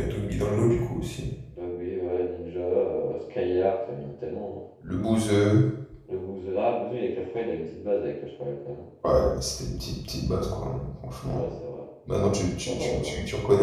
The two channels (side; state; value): both; identical; correlation 1.00